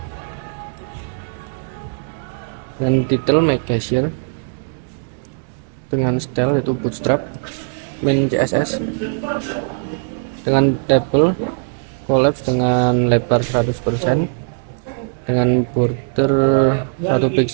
dan title make cashier dengan style yaitu bootstrap main CSS dengan table collapse dengan lebar 100% dengan border 1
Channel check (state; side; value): silent; left; digital silence